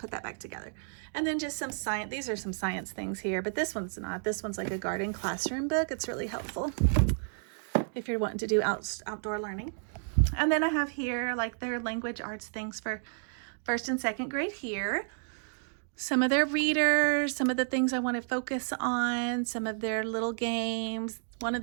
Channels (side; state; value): left; silent; digital silence